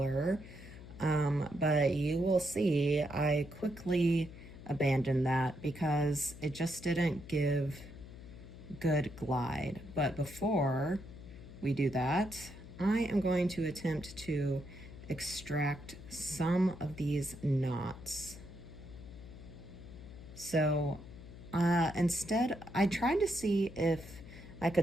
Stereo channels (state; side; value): noise; left; hum, 15 dB below the sound